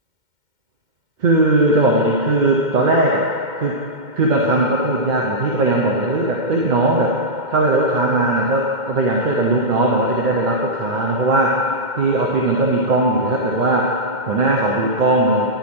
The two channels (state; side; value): late; left; 2.1 ms